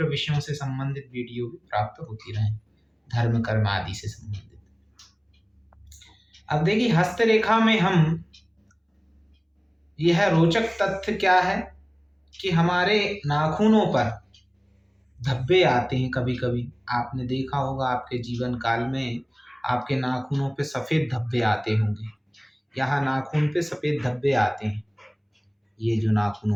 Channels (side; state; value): both; identical; correlation 1.00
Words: विषयों से संबंधित वीडियो भी प्राप्त होती रहें, धर्म कर्म आदि से संबंधित। अब देखिए, हस्तरेखा में हम यह रोचक तथ्य क्या है कि हमारे नाखूनों पर धब्बे आते हैं। कभी कभी आपने देखा होगा, आपके जीवन काल में आपके नाखूनों पे सफ़ेद धब्बे आते होंगे। यहाँ नाखून पे सफ़ेद धब्बे आते हैं, ये जो नाखून